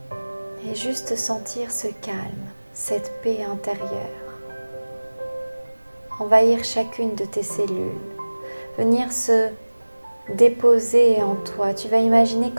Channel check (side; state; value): both; inverted; correlation -1.00